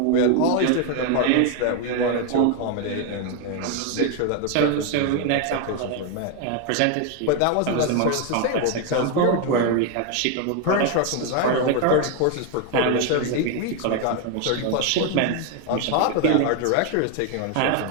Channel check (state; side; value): different; both; correlation 0.01